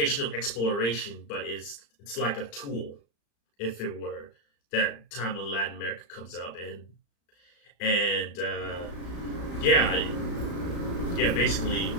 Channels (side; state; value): right; late; 35 ms